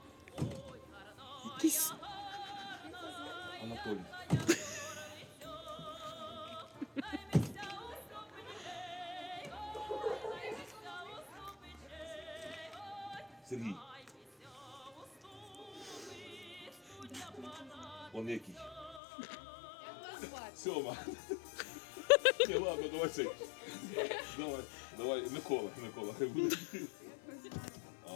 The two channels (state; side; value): drops out; right; at 19.0 s